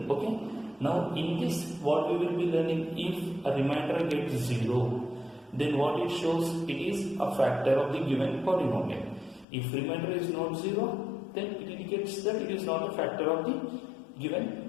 Okay, now in this what we will be learning, if a remainder gets 0, then what it shows, it is a factor of the given polynomial. If remainder is not 0, then it indicates that it is not a factor of the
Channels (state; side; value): drops out; right; at 9.5 s